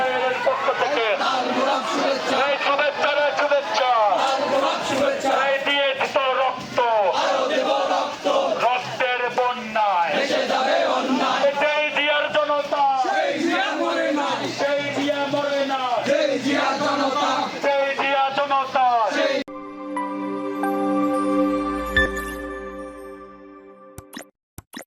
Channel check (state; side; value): identical; both; correlation 1.00